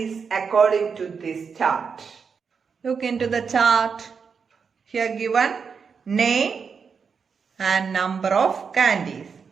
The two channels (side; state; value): left; quieter; 5.9 dB